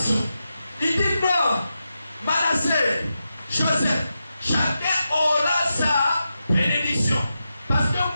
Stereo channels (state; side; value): inverted; both; correlation -0.89